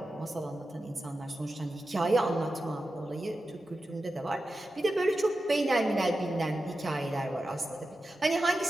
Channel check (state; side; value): normal; both; correlation 0.91